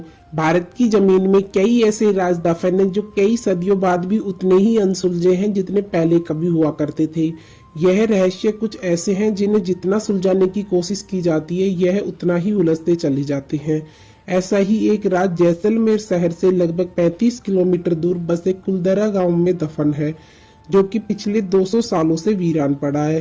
भारत की जमीन में कई ऐसे राज दफन हैं जो कई सदियों बाद भी उतने ही अनसुलझे हैं जितने पहले कभी हुआ करते थे। यह रहस्य कुछ ऐसे हैं जिन्हें जितना सुलझाने की कोशिश की जाती है यह उतना ही उलझते चले जाते हैं। ऐसा ही एक राज जैसलमेर शहर से लगभग 35 किलोमीटर दूर बसे कुलधरा गांव में दफन है, जो कि पिछले 200 सालों से वीरान पड़ा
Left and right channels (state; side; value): identical; both; correlation 1.00